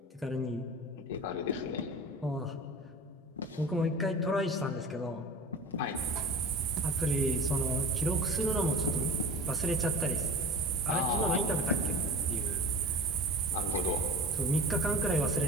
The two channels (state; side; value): normal; both; correlation 0.36